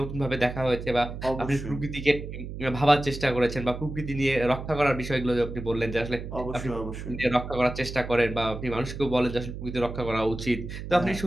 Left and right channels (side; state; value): right; noise; hum, 8 dB below the sound